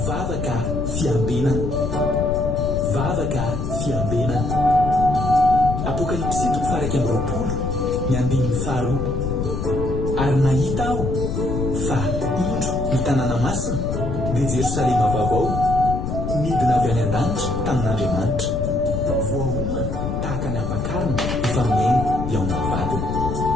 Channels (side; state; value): left; noise; rumble, 3 dB below the sound